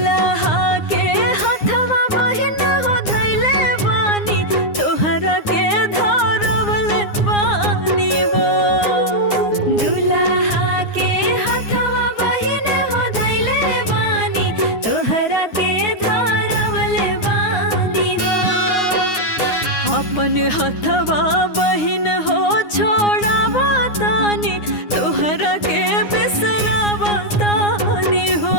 के हथवा बहिन हो धैले बानी तोहरा के धरवल बानी हो। दुल्हा के हथवा बहिन हो धैले बानी तोहरा के धरवल बानी हो। अपन हथवा बहिन हो छोड़ावा तानी तोहरा के बिसरावा तानी हो।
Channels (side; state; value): right; late; 9.7 ms